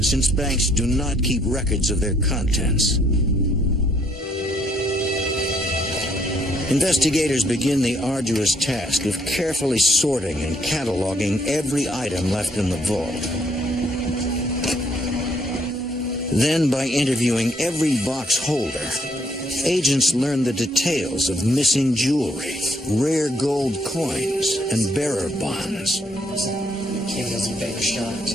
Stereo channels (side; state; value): both; normal; correlation 0.69